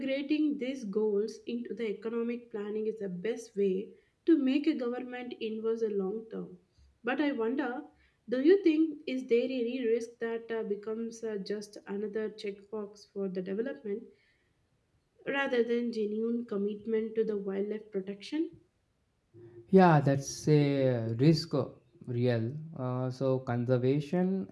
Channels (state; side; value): identical; both; correlation 1.00